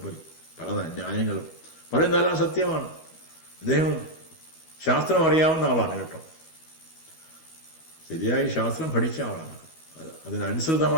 പല ന്യായങ്ങളും പറയുന്നതെല്ലാം സത്യമാണ്. അദ്ദേഹം ശാസ്ത്രം അറിയാവുന്ന ആളാണ് കേട്ടോ. ശരിയായി ശാസ്ത്രം പഠിച്ച ആളാണ്.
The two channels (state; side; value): late; right; 12 ms